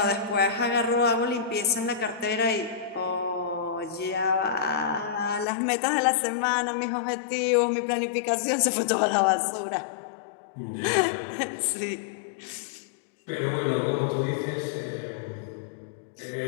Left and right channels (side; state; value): right; drops out; at 5.5 s